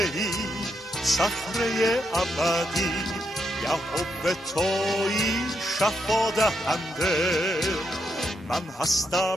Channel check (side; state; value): both; normal; correlation 0.79